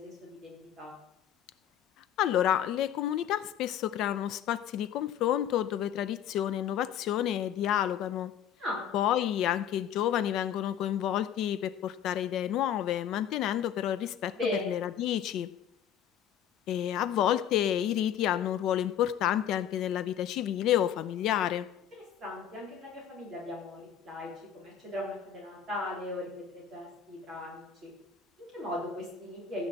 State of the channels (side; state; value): right; quieter; 9.5 dB